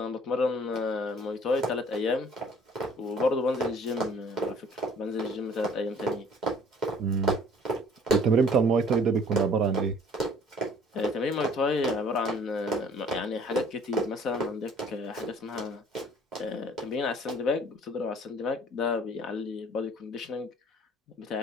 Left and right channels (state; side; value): normal; both; correlation 0.54